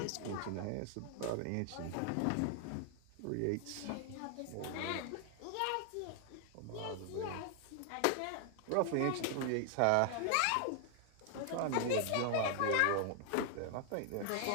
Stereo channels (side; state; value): both; different; correlation 0.00